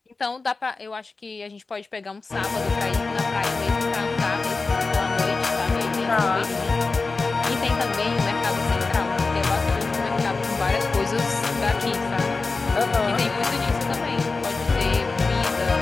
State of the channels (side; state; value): right; quieter; 3.9 dB